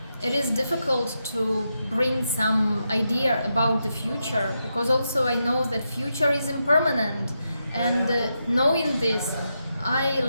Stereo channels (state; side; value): inverted; both; correlation -0.85